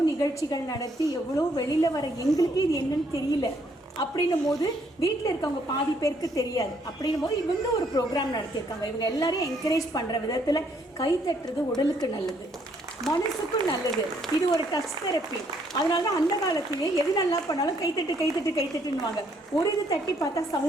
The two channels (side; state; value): both; normal; correlation 0.69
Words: நிகழ்ச்சிகள் நடத்தி எவ்வளோ வெளியில் வர எங்களுக்கு இது என்னன்னு தெரியல அப்படின்னும் போது வீட்டில் இருக்கவங்க பாதி பேருக்கு தெரியாது. அப்படின்னும் போது இவங்க ஒரு ப்ரோக்ராம் நடத்தியிருக்காங்க. இவங்க எல்லாரையும் என்கரேஜ் பண்ணுற விதத்தில் கை தட்டுறது உடலுக்கு நல்லது, மனசுக்கும் நல்லது. இது ஒரு டச் தெரப்பி. அதனால தான் அந்த காலத்திலே எது நல்லா பண்ணாலும் கைத்தட்டுன்னுவாங்க. ஒரு இது தட்டி பார்த்தா